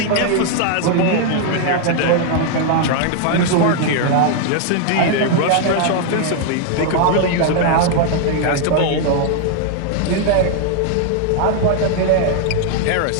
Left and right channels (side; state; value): both; different; correlation 0.00